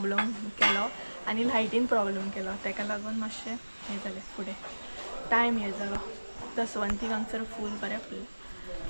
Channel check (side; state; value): both; inverted; correlation -1.00